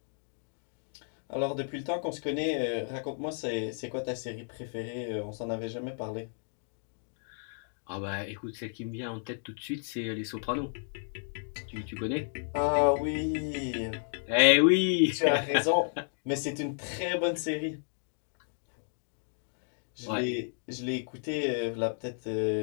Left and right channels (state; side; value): silent; right; digital silence